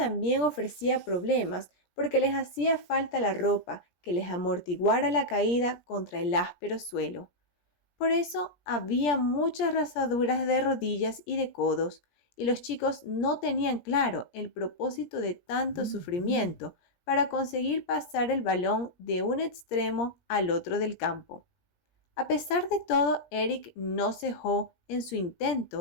ofrecía problemas porque les hacía falta la ropa que les amortiguara la caída contra el áspero suelo. Por eso había muchas rasaduras de rodillas y de codos, y los chicos no tenían claro el propósito de tanto sufrimiento para conseguir pasar el balón de un extremo al otro del campo. A pesar de todo, Eric no cejó en su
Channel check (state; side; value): late; right; 17 ms